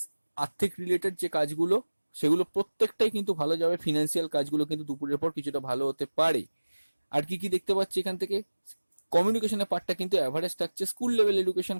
আর্থিক রিলেটেড যে কাজগুলো সেগুলো প্রত্যেকটাই কিন্তু ভালো যাবে। ফিনান্সিয়াল কাজগুলো কিন্তু দুপুরের পর কিছুটা ভালো হতে পারে। আর কি কি দেখতে পাচ্ছি এখান থেকে, কমিউনিকেশনের পার্টটা কিন্তু অ্যাভারেজ থাকছে। স্কুল লেভেল এডুকেশন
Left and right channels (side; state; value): both; inverted; correlation -1.00